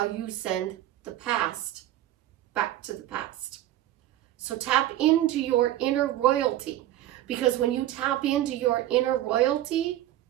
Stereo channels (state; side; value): quieter; left; 13.8 dB